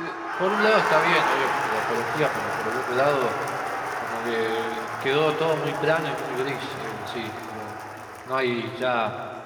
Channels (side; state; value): both; identical; correlation 1.00